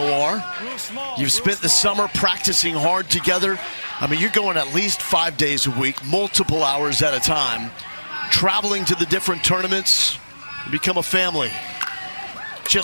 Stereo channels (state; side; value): inverted; both; correlation -1.00